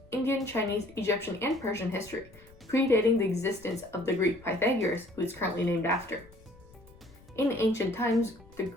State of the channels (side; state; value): left; noise; rumble, 24 dB below the sound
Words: Indian, Chinese, Egyptian, and Persian history, predating the existence of the Greek Pythagoras, who is currently named after. In ancient times, the